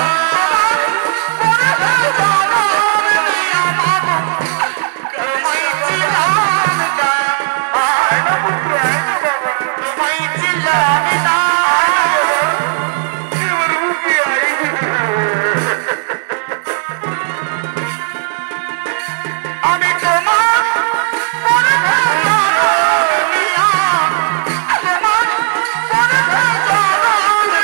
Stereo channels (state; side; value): silent; left; digital silence